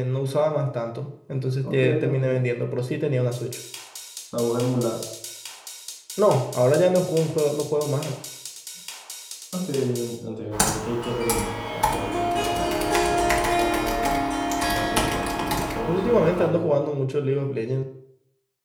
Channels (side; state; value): both; identical; correlation 1.00